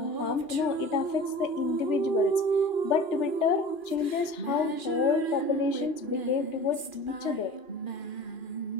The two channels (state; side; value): late; right; 2.4 ms